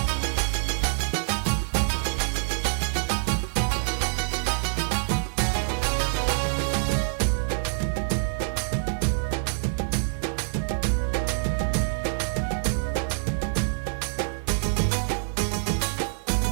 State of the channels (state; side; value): silent; left; 61 dB below the other